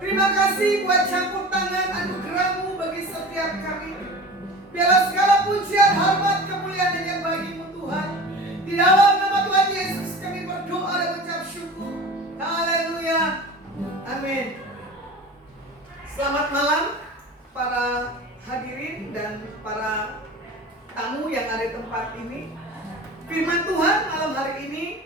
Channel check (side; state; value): both; normal; correlation 0.36